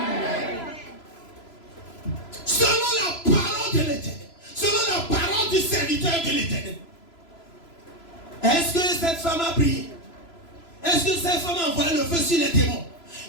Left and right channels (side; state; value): right; late; 3.0 ms